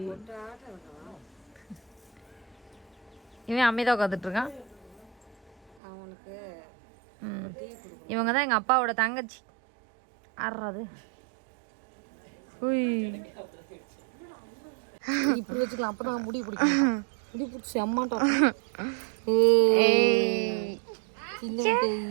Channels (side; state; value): left; drops out; at 5.8 s